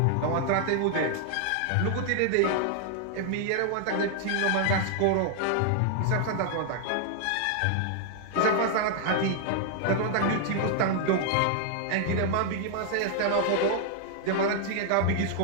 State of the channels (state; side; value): different; both; correlation -0.01